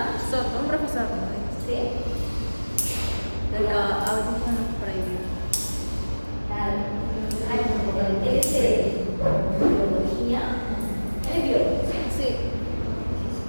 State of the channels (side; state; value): both; inverted; correlation -1.00